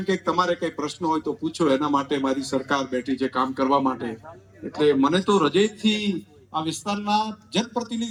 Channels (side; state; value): both; identical; correlation 1.00